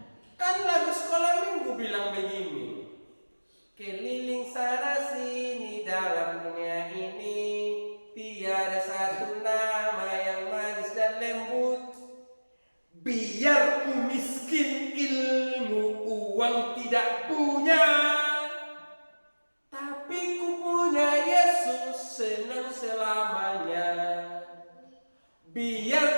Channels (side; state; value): both; inverted; correlation -1.00